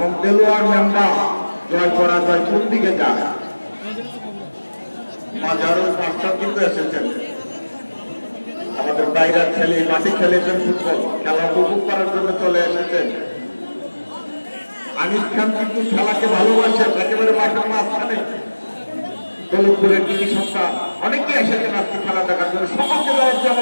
দেলোয়ার মেম্বার জয় পরাজয় কোন দিকে যায়। হাজারো দর্শক কিন্তু এসেছেন, আমাদের বাইরের ছেলে মাঠে খেলেছেন ফুটবল, খেলা উপভোগ করার জন্য চলে এসেছেন। আনিস খান কিন্তু খেলাকে ভালোবাসেন, একেবারে মাঠের মাঝখানে দৌলতপুরের টিভি সংস্থা অনেকে এসেছেন আজকে খেলা দেখার জন্য। সকলকে দেওয়া হচ্ছে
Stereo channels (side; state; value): both; inverted; correlation -1.00